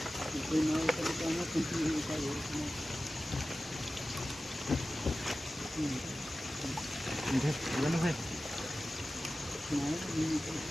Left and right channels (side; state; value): both; normal; correlation 0.95